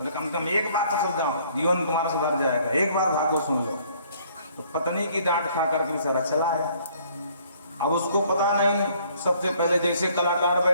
कम से कम एक बार तो सुन जाओ, जीवन तुम्हारा सुधर जाएगा, एक बार भागवत सुन लो। तो पत्नी की डांट खा करके बेचारा चला आया। अब उसको पता नहीं, सबसे पहले जैसे कलाकार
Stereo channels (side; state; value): both; inverted; correlation -0.61